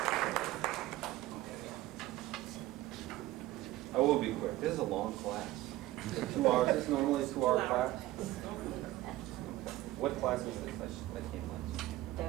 I will be quick. This is a long class. 2 hours. This is normally a 2-hour class. What class is this? I can't watch.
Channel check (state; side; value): quieter; left; 16.4 dB